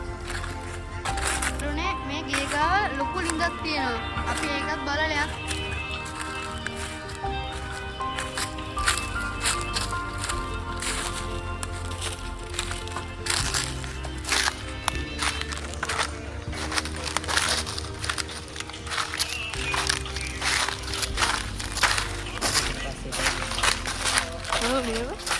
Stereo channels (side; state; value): both; identical; correlation 1.00